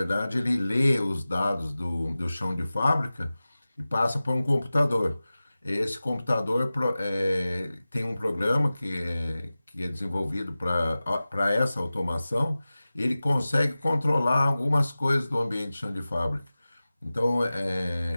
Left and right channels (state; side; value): inverted; both; correlation -0.96